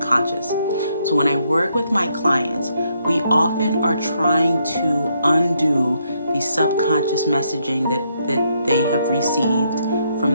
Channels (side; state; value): both; inverted; correlation -0.75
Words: So when I work with my clients, we often are trying to undo the subconscious messaging that they have received